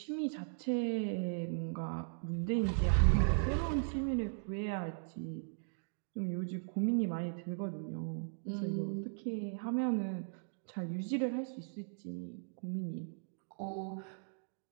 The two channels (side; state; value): left; silent; digital silence